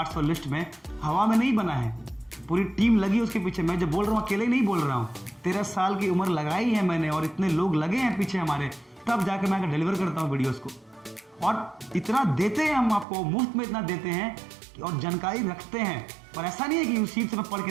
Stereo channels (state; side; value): drops out; left; at 13.1 s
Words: लिस्ट में, हवा में नहीं बना है, पूरी टीम लगी उसके पीछे। मैं जो बोल रहा हूँ अकेले नहीं बोल रहा हूँ, 13 साल की उम्र लगाई है मैंने और इतने लोग लगे हैं पीछे हमारे, तब जाकर मैं डिलीवर करता हूँ वीडियोस को। और इतना देते हैं हम आपको, मुफ्त में इतना देते हैं और जानकारी रखते हैं। पर ऐसा नहीं है कि यूसीड से मैं पढ़